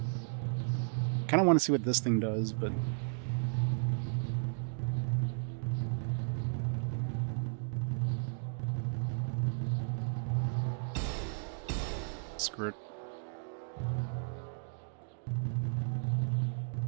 Kind of want to see what this thing does, but screw it.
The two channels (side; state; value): left; silent; digital silence